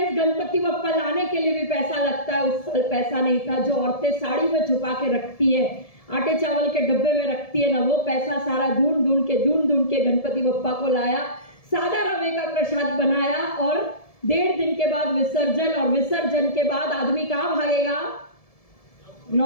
गणपति बप्पा लाने के लिए भी पैसा लगता है, उस साल पैसा नहीं था। जो औरतें साड़ी में छुपा के रखती है, आटे चावल के डब्बे में रखती है ना, वो पैसा सारा ढूंढ ढूंढ के गणपति बप्पा को लाया, सादा रवे का प्रसाद बनाया, और 1.5 दिन के बाद विसर्जन, और विसर्जन के बाद आदमी कहाँ भागेगा?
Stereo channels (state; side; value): late; right; 1.7 ms